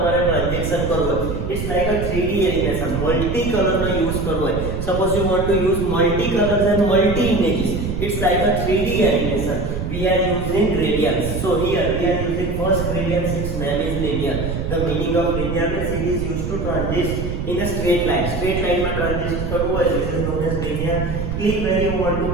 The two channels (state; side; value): noise; right; rumble, 4 dB below the sound